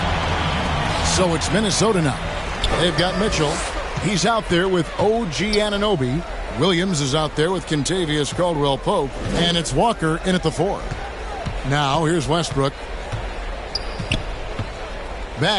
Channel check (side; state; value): both; identical; correlation 1.00